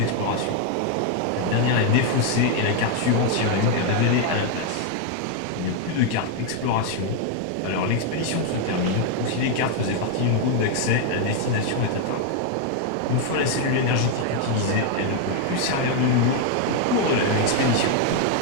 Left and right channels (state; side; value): different; both; correlation 0.00